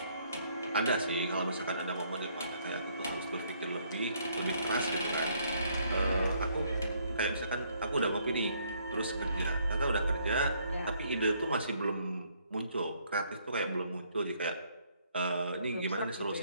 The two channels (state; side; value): inverted; both; correlation -0.68